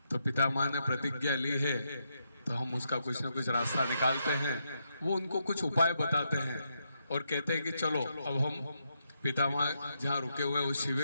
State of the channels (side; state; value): both; inverted; correlation -0.81